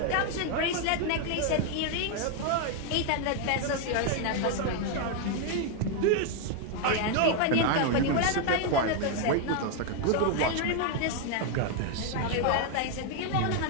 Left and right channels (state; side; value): different; both; correlation 0.00